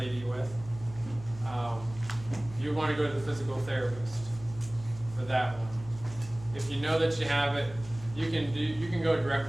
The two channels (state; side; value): noise; left; hum, 16 dB below the sound